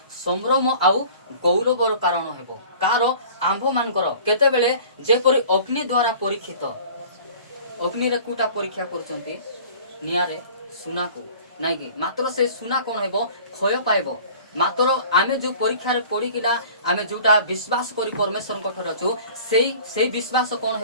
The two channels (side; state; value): both; inverted; correlation -0.46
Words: संभ्रम आउ गौरवर कारण हेबो कार आंभ मानकर केते बेले जेपरि अग्नि द्वारा परीक्षित अग्नि रे कुटा परीक्षा करचंती नियारे सुना को नाही कि मात्र से सुना कोन हेबो क्षय पाइबो मात्र आमे जो परीक्षा रे पड़ी किना आमे जोटा विश्वास करी परमेश्वर कठर छु सेई विश्वास कोन